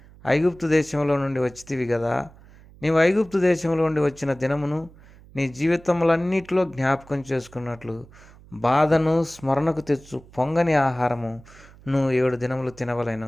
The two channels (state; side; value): noise; right; hum, 23 dB below the sound